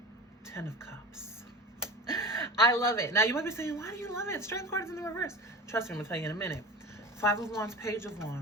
10 of Cups. I love it. Now, you might be saying, why do you love it? Strength card is in the reverse. Trust me, I'm going to tell you in a minute. 5 of Wands, Page of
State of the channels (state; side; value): normal; both; correlation 0.33